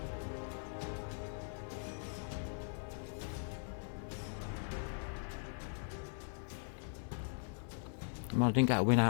Well, I didn't get a win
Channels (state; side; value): silent; right; digital silence